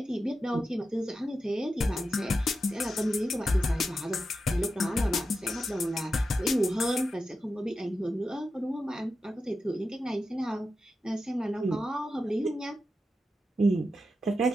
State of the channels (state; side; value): normal; both; correlation 0.90